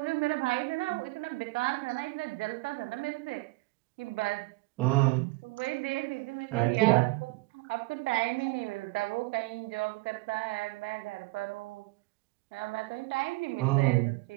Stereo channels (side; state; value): left; quieter; 23.1 dB